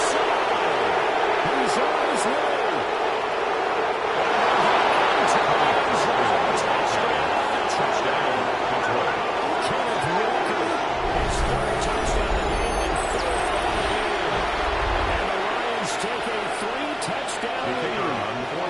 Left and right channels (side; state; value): both; identical; correlation 1.00